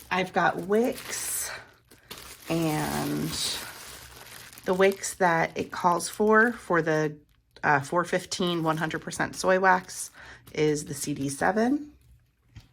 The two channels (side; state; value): both; identical; correlation 1.00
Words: I've got wicks, and the wicks that it calls for the 415 100% soy wax is the CD7.